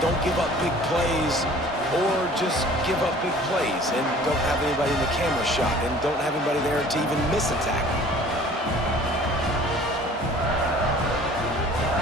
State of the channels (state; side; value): normal; both; correlation 0.49